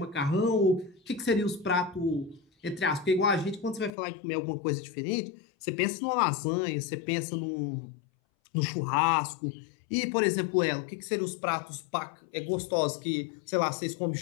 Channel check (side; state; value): right; drops out; at 3.9 s